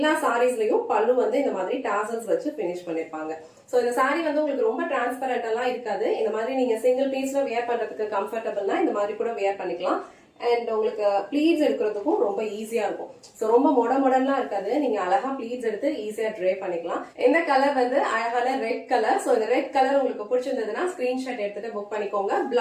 சாரீஸ்லயும் பல்லு வந்து இந்த மாதிரி டாசல்ஸ் வச்சு பினிஷ் பண்ணிருப்பாங்க. சோ இந்த சாரி வந்து உங்களுக்கு ரொம்ப டிரான்ஸ்பரண்ட் எல்லாம் இருக்காது. இந்த மாதிரி நீங்க சிங்கிள் பீஸ்ல வியர் பண்றதுக்கு கம்ஃபர்டபிள்னா இந்த மாதிரி கூட வியர் பண்ணிக்கலாம். அண்ட் உங்களுக்கு ப்ளீட்ஸ் எடுக்கிறதுக்கும் ரொம்ப ஈஸியா இருக்கும். சோ ரொம்ப மொடலாம் இருக்காது. நீங்க அழகா ப்ளீட்ஸ் எடுத்து ஈஸியா ட்ரே பண்ணிக்கலாம். இந்த கலர் வந்து அழகான ரெட் கலர். சோ இந்த ரெட் கலர் உங்களுக்கு பிடிச்சிருந்ததுன்னா ஸ்கிரீன்ஷாட் எடுத்துட்டு புக் பண்ணிக்கோங்க.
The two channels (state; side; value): identical; both; correlation 1.00